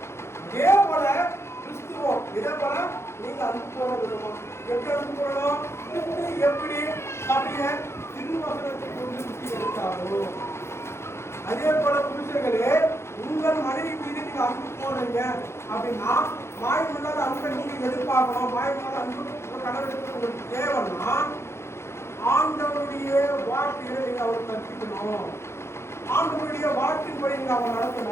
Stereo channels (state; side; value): late; right; 0.13 ms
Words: இதே போல கிறிஸ்துவோம் இதே போல நீங்க அன்பு கூற விதமா எப்படி அன்பு கூறணும்? கிறிஸ்து எப்படி சபையை திருவசனத்தை கொண்டு சுற்றி எடுத்தாரோ அதே போல புருஷர்களே உங்கள் மனைவி மீது நீங்க அன்பு போடுறீங்க அப்படின்னா மாயமில்லாத அன்பை நீங்க எதிர்பார்க்கணும். மாயமில்லாத அன்பு கடவுளுக்கு உங்களுக்கு தேவைன்னா ஆண்டவருடைய வாழ்க்கையை நீங்க அவர் கற்பிக்கணும். ஆண்டவருடைய வாழ்க்கையின்படி நீங்க அவங்க